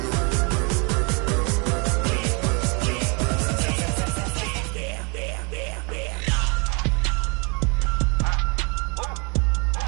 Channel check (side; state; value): left; quieter; 32.6 dB